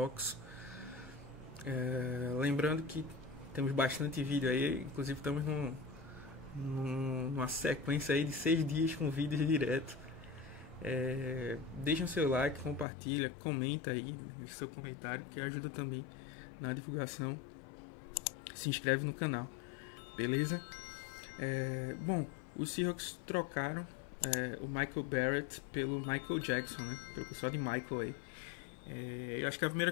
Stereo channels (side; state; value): right; drops out; at 12.9 s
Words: Lembrando que temos bastante vídeo aí, inclusive estamos numa sequência aí de 6 dias com vídeos direto. Deixa o seu like, compartilha, comenta aí, deixa seu comentário que ajuda também na divulgação. Se inscreve no canal, beleza? Bom, os Seahawks trocaram o Michael Barrett pelo Michael Jackson, né? Pelo pessoal de Michael aí. Eu acho que a primeira